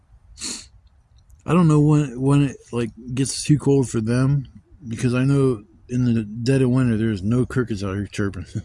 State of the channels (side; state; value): both; identical; correlation 1.00